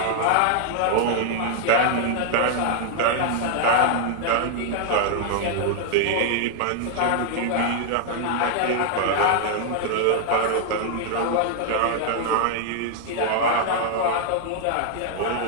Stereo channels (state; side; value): different; both; correlation 0.00